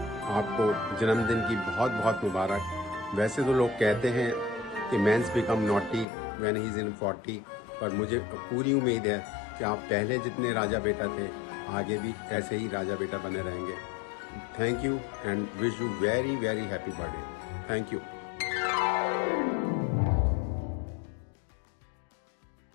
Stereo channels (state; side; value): drops out; right; at 6.1 s